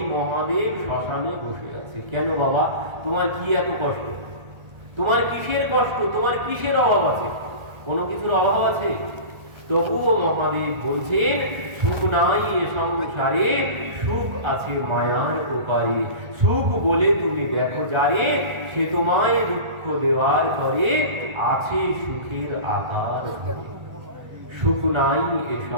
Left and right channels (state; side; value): late; left; 1.3 ms